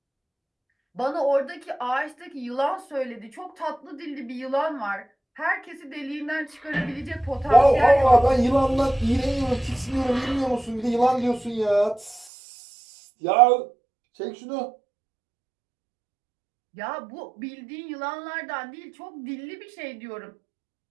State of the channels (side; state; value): left; drops out; at 12.3 s